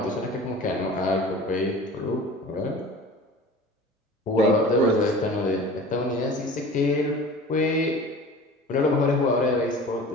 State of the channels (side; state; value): both; normal; correlation 0.41